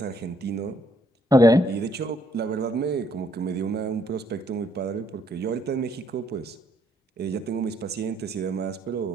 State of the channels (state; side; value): normal; both; correlation 0.69